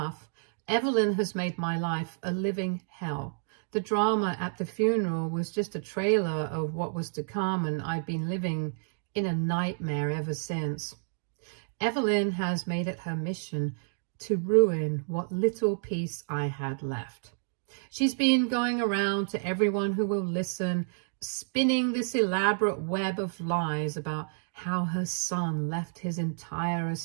Evelyn has made my life a living hell. The drama at the funeral was just a trailer of what was to come, and I've been living in a nightmare ever since. Evelyn has made it her mission to ruin what little peace I had left. She's been going around to everyone who will listen, spinning this elaborate web of lies about how her son left his entire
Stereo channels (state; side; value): silent; left; digital silence